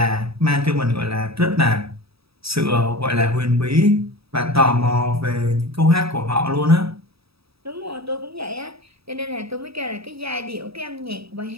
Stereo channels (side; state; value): left; late; 0.77 ms